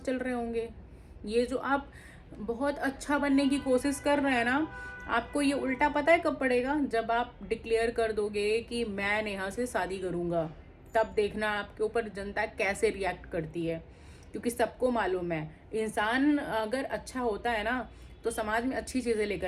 रहे होंगे। ये जो आप बहुत अच्छा बनने की कोशिश कर रहे हैं ना, आपको ये उल्टा पता है कब पड़ेगा? जब आप डिक्लेयर कर दोगे कि मैं नेहा से शादी करूँगा, तब देखना आपके ऊपर जनता कैसे रिएक्ट करती है। क्योंकि सबको मालूम है, इंसान अगर अच्छा होता है ना तो समाज में अच्छी चीज़ें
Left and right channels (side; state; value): both; identical; correlation 1.00